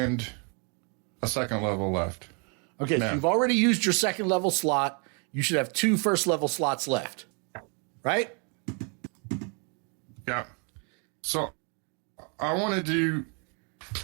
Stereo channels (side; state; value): left; quieter; 36.6 dB